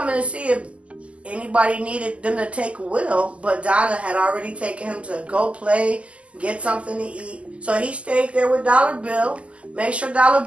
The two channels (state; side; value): late; left; 0.059 ms